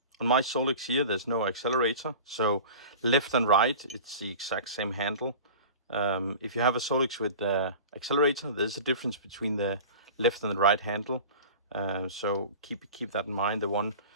on my Solex here, there's no accelerator, so left and right, it's the exact same handle. If you have a Solex with the accelerator, there's a difference between the left and the right handle. So keep that in mind. The one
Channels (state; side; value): inverted; both; correlation -0.36